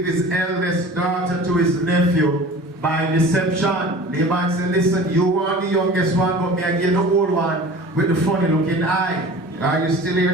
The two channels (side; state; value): both; normal; correlation 0.41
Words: his eldest daughter to his nephew by deception. Laban said, listen, you want the youngest one, but me I get the old one with the funny looking eye. Are you still